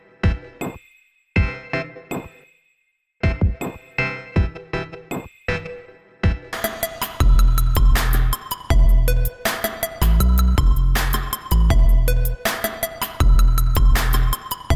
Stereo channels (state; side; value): identical; both; correlation 1.00